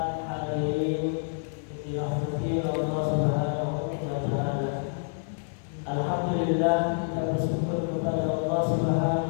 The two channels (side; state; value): right; silent; 59 dB below the other